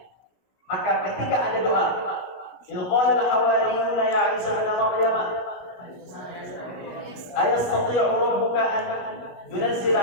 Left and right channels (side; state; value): right; late; 17 ms